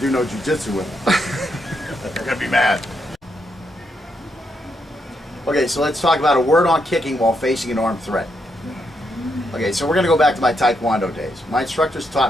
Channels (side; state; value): both; normal; correlation 0.80